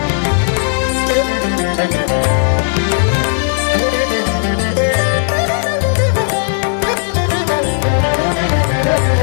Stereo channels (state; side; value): silent; right; digital silence